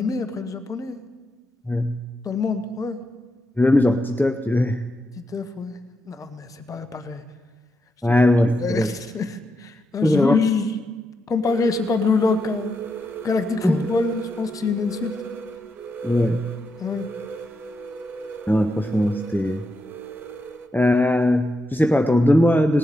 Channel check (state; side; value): normal; both; correlation 0.85